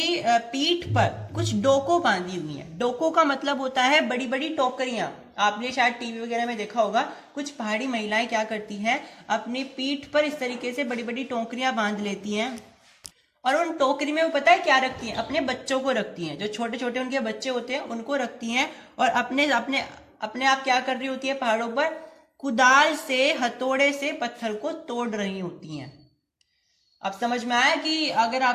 पीठ पर कुछ डोको बांधी हुई हैं। डोको का मतलब होता है बड़ी बड़ी टोकरियां, आपने शायद टीवी वगैरह में देखा होगा। कुछ पहाड़ी महिलाएं क्या करती हैं, अपनी पीठ पर इस तरीके से बड़ी बड़ी टोकरियां बांध लेती हैं और उन टोकरी में वो पता है क्या रखती हैं, अपने बच्चों को रखती हैं, जो छोटे छोटे उनके बच्चे होते हैं उनको रखती हैं, और अपने अपने अपने आप क्या कर रही होती है, पहाड़ों पर कुदाल से, हथौड़े से पत्थर को तोड़ रही होती हैं। अब समझ में आया कि अगर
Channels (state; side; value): identical; both; correlation 1.00